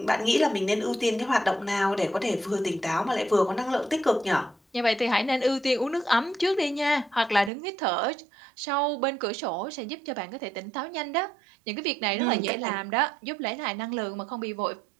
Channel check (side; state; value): left; drops out; at 7.5 s